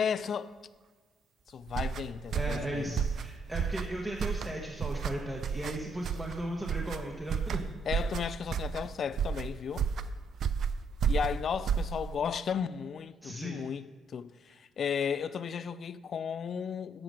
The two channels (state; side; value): normal; both; correlation 0.70